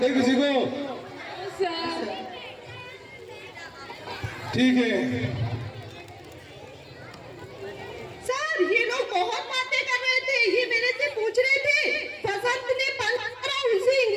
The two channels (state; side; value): identical; both; correlation 1.00